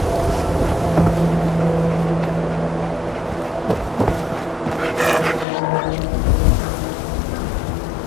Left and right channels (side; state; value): right; drops out; at 5.5 s